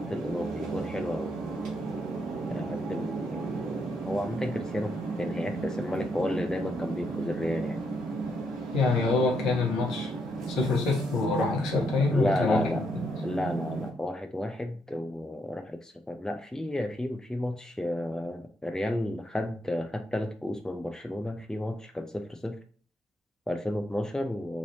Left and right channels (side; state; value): both; normal; correlation 0.77